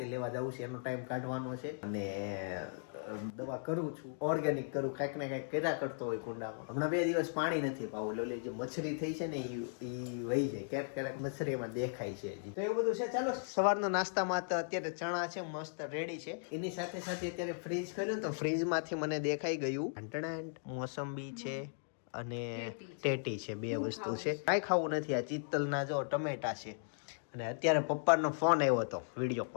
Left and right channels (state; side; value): silent; right; digital silence